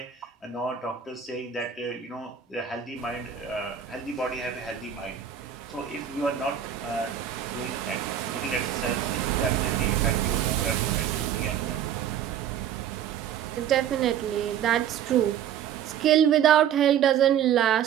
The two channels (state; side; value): quieter; left; 9.4 dB